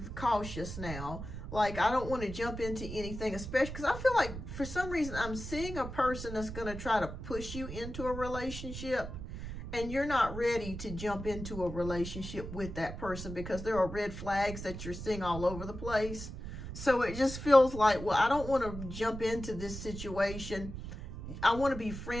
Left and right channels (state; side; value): noise; right; rumble, 8 dB below the sound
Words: cautious now. Like, I don't want to jump into anything, especially because I feel like for some reason I'm seeing a person that's going to try to push you into a relationship, and you're not ready to jump into a relationship with that person, because there are red flags that you're seeing all over the place. So it just feels like, well, I don't want to jump into this situation. I want to be